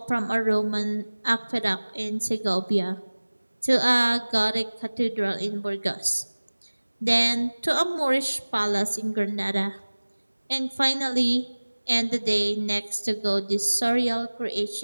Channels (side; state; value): both; inverted; correlation -1.00